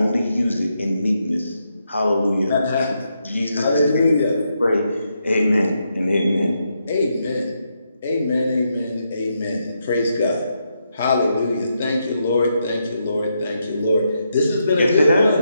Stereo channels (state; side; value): inverted; both; correlation -0.82